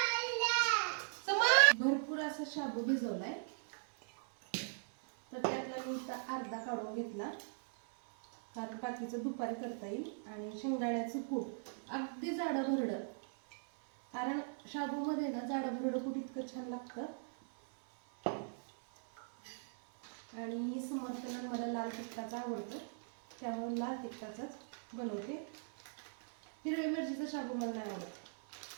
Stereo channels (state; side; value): silent; left; 52 dB below the other